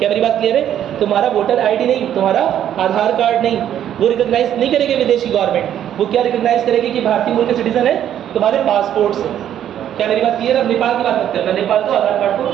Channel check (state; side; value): quieter; left; 10.5 dB